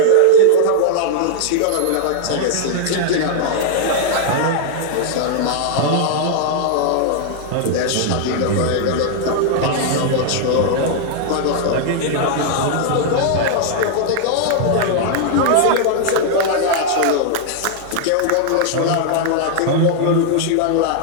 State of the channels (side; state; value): both; different; correlation -0.01